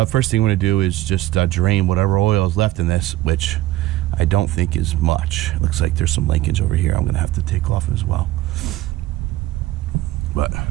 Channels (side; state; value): left; quieter; 15.9 dB